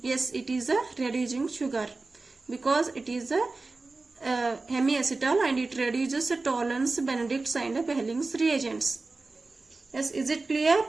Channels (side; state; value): left; quieter; 3.6 dB